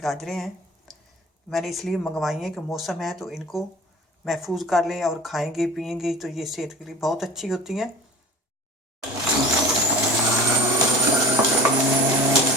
हैं। मैंने इसलिए मंगवाई हैं कि मौसम है तो इनको महफूज कर लें और खाएंगे पिएंगे तो ये सेहत के लिए बहुत अच्छी होती हैं।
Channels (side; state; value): both; normal; correlation 0.38